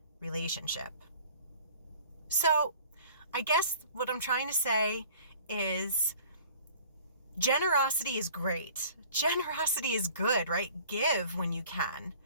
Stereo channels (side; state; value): both; inverted; correlation -0.49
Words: relationship. So I guess what I'm trying to say is generosity is great. Generosity is good, right? Give when you can.